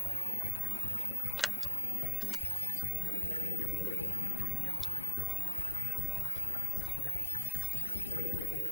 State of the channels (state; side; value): normal; both; correlation 0.52